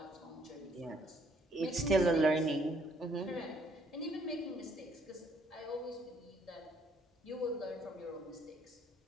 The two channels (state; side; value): normal; both; correlation 0.66